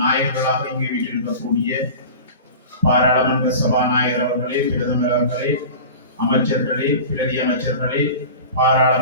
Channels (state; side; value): inverted; both; correlation -0.35